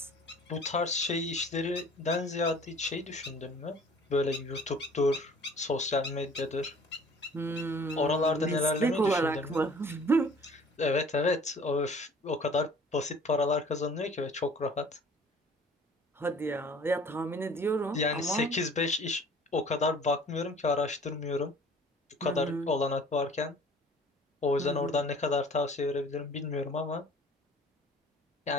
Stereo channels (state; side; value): normal; both; correlation 0.50